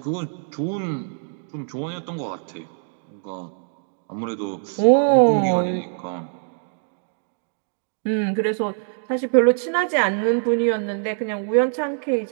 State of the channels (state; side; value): silent; left; digital silence